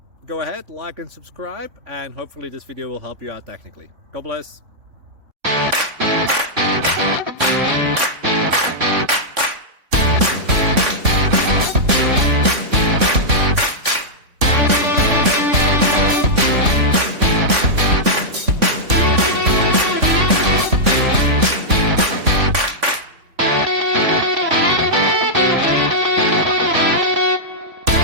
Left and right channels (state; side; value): late; left; 3.5 ms